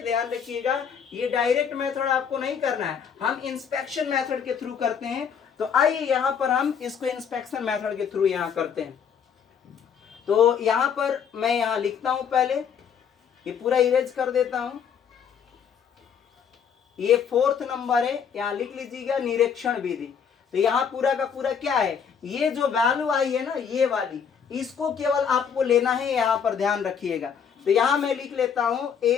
ध्यान रखिएगा, ये डायरेक्ट मेथड आपको नहीं करना है, हम इंस्पेक्शन मेथड के थ्रू करते हैं। तो आइए यहाँ पर हम इसको इंस्पेक्शन मेथड के थ्रू यहाँ करते हैं। तो यहाँ पर मैं यहाँ लिखता हूं, पहले ये पूरा इरेज कर देता हूं। ये 4th नंबर है, यहाँ लिख लीजिएगा निरीक्षण विधि। तो यहाँ पूरा का पूरा क्या है, ये जो वैल्यू आई है ना ये वाली, इसको केवल आपको लेना है, यहाँ पर ध्यान रखिएगा। तो यहाँ मैं लिख लेता हूं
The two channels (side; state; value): right; quieter; 7.2 dB